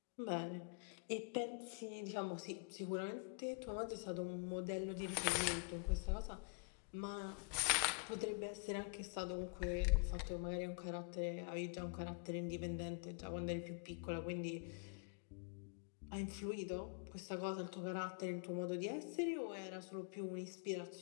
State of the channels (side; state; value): right; quieter; 37.4 dB